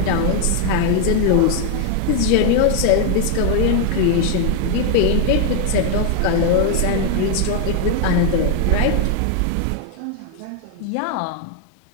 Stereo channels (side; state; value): both; different; correlation 0.00